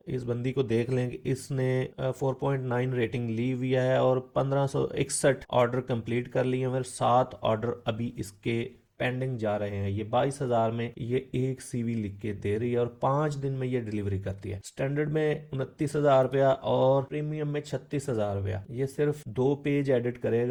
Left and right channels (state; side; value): identical; both; correlation 1.00